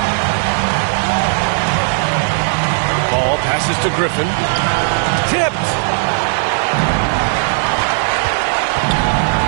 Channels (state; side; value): silent; left; digital silence